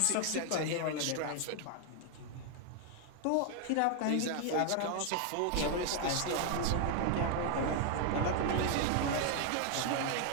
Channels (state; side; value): different; both; correlation 0.00